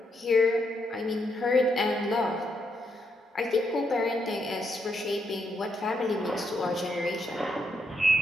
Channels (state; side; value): normal; both; correlation 0.79